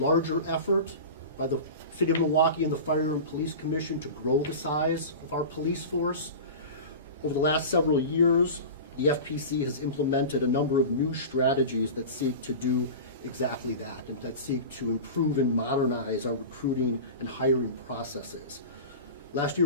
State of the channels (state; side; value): inverted; both; correlation -0.31